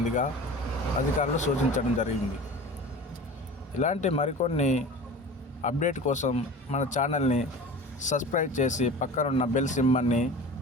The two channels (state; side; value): normal; both; correlation 0.37